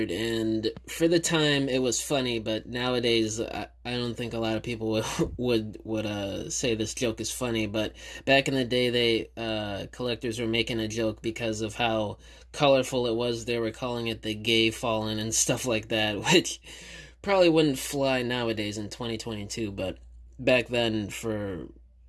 and for the time it was funny, but nowadays I don't think a lot of people would say this joke is funny. But back in the day, collectors were making a joke because of how colorful it was. They were calling it the gay fallen and stuff like that, which probably wouldn't fly nowadays in 2022. But back then, for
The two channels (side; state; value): both; identical; correlation 1.00